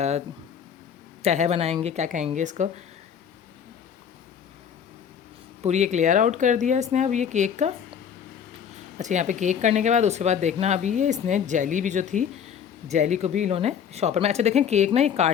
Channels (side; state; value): right; quieter; 8.0 dB